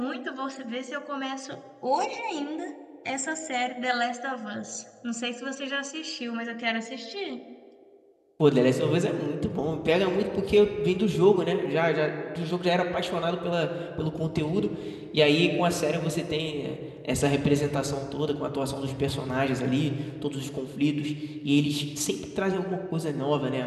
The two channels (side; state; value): both; identical; correlation 1.00